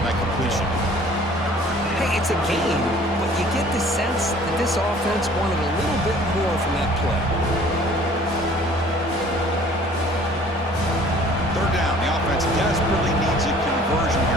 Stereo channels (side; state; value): both; normal; correlation 0.52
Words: that completion. Hey, it's a game, but you get the sense that this offense wanted a little bit more from that play. Third down. The offense desperately needs a conversion